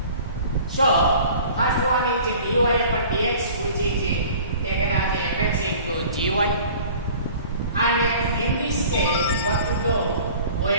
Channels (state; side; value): inverted; both; correlation -0.46